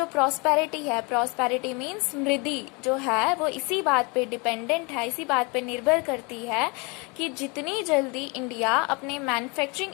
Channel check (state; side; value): quieter; right; 29.6 dB